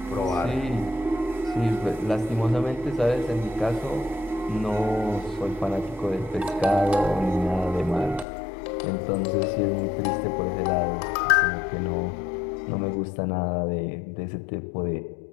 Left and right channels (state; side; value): drops out; right; at 8.2 s